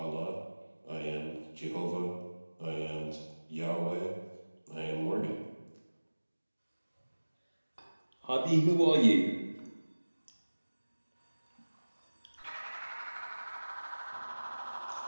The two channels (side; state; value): both; inverted; correlation -1.00